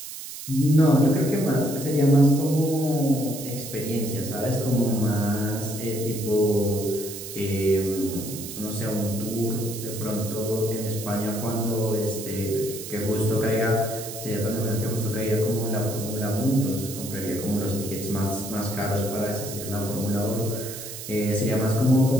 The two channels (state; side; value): noise; right; hiss, 10 dB below the sound